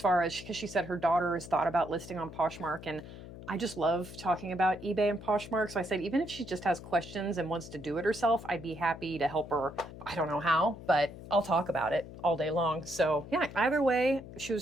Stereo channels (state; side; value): noise; left; hum, 14 dB below the sound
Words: far as because she said her daughter has thought about listing on Poshmark, and I just love talking about eBay and Poshmark. So I said, even if she just has questions and wants to do it herself, I'd be happy to help her. I don't know how, but I'll talk about it all day long. So yeah, either way, she